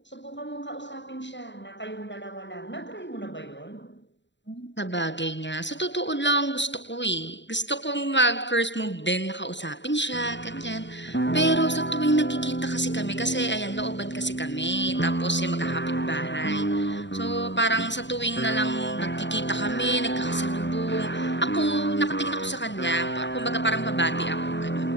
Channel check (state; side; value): late; right; 0.52 ms